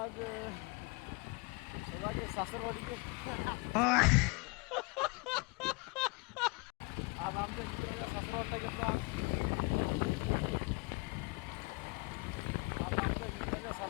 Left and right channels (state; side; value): quieter; right; 28.1 dB